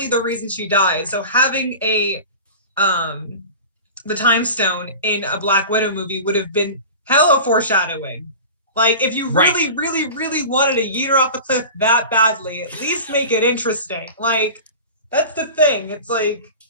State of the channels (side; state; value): both; inverted; correlation -0.34